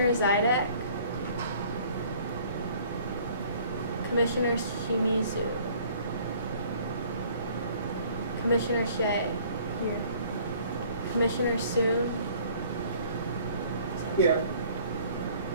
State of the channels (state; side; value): inverted; both; correlation -0.55